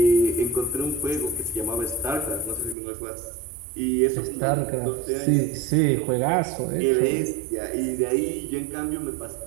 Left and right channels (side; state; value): left; drops out; at 2.8 s